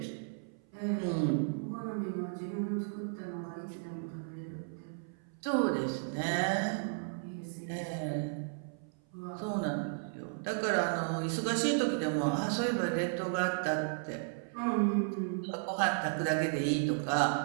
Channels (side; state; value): left; silent; 55 dB below the other